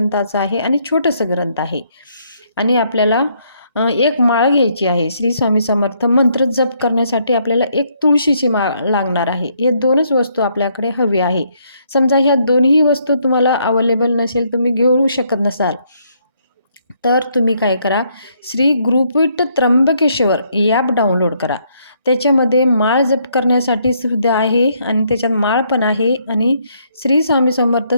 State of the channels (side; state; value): both; inverted; correlation -0.71